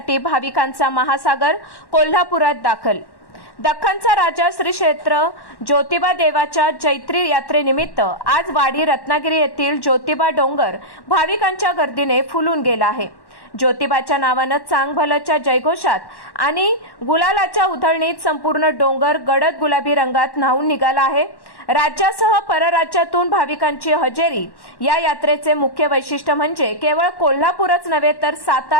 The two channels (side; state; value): right; late; 1.1 ms